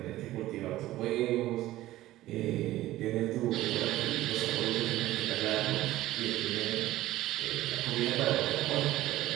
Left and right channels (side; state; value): left; quieter; 15.8 dB